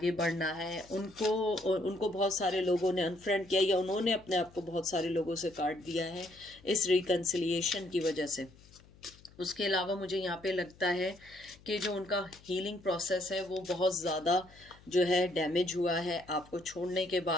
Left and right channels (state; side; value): noise; left; hum, 25 dB below the sound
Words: बढ़ना है। उनको बहुत सारे लोगों ने अनफ्रेंड किया, या उन्होंने अपने आप को बहुत सारे लोगों से काट दिया है इस रिकन्सिलिएशन की वजह से। उसके अलावा मुझे यहाँ पे लगता है कि जो उनका हीलिंग प्रोसेस है वो बहुत ज़्यादा जो है डैमेज हुआ है आपको छोड़ने के